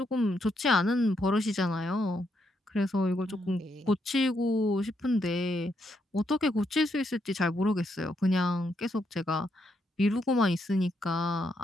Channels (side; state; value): both; normal; correlation 0.78